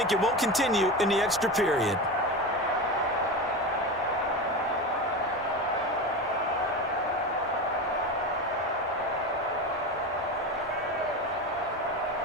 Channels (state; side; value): normal; both; correlation 0.23